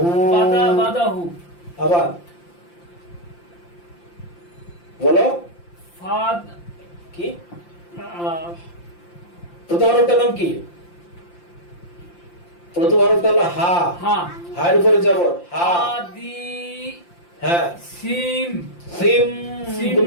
বাদা বাদাহু আবার বলো ফাদ কি আহ, প্রথম হরফটার নাম কি? প্রথম হরফটা হলো হা। হা হায়ের উপরে যাব হা। হাদি হ্যাঁ, সিম সিম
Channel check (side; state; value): right; late; 5.8 ms